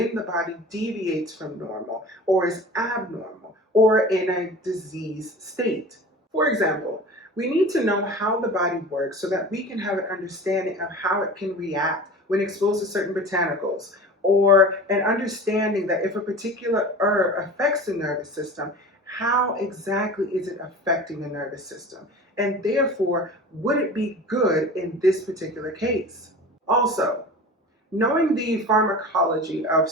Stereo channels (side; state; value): both; normal; correlation 0.36